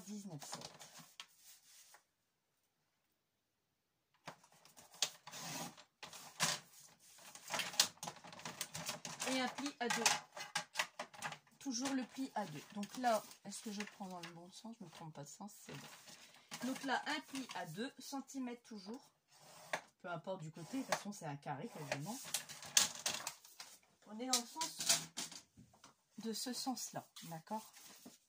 Et un pli à 2. Toujours le pli à 2. Donc là, est-ce que je prends dans le bon sens? Je ne me trompe pas de sens, c'est bon. Donc là, un pli à 2 cm toujours. Peu importe du côté, de toute façon c'est un carré quasiment. On est dans le sens de ce sens-là, d'accord?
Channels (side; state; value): both; identical; correlation 1.00